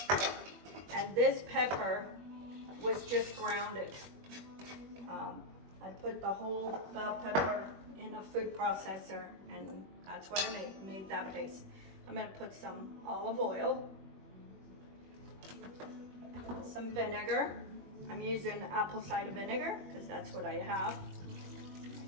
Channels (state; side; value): late; left; 21 ms